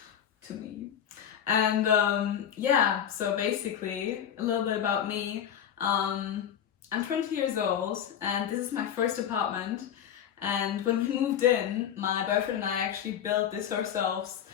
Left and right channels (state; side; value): quieter; right; 9.3 dB